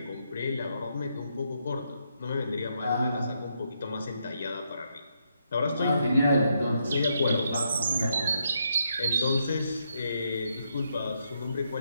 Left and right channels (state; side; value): inverted; both; correlation -0.78